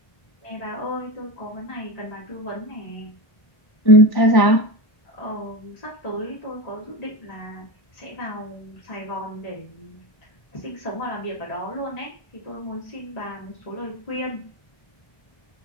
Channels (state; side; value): late; right; 1.1 ms